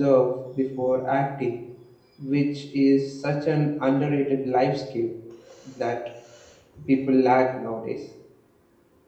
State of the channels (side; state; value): both; identical; correlation 1.00